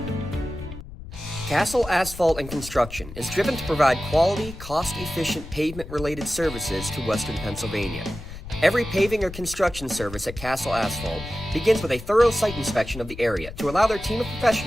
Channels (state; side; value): noise; left; rumble, 13 dB below the sound